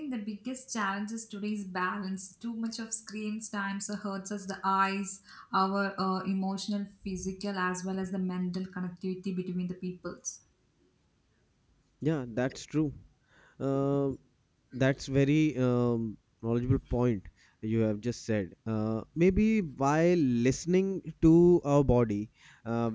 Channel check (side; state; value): both; identical; correlation 1.00